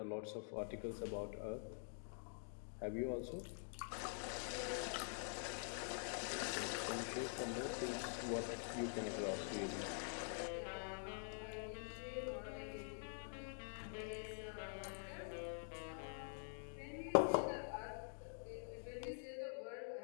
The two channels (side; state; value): right; silent; digital silence